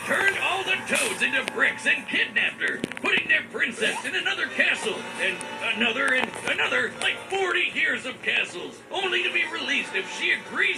turned all the toads into bricks and kidnapped her, putting their princess in another castle, and another, like 40 years of castles, only to be released if she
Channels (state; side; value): identical; both; correlation 1.00